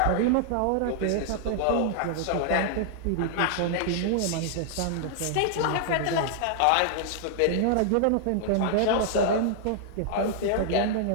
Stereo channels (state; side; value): different; both; correlation -0.01